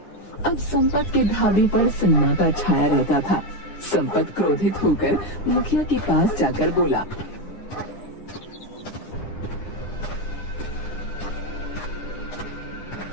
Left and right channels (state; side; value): late; right; 9.9 ms